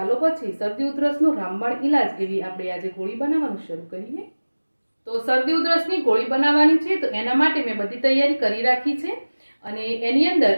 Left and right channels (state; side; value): inverted; both; correlation -1.00